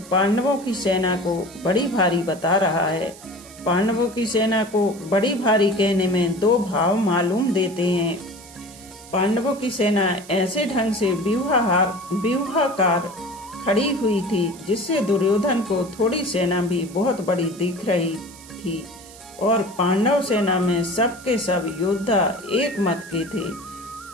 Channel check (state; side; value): noise; right; hiss, 19 dB below the sound